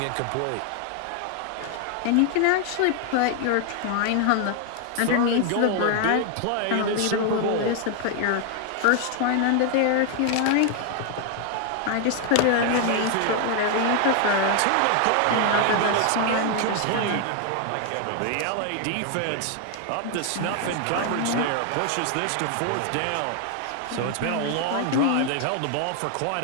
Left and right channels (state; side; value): different; both; correlation 0.00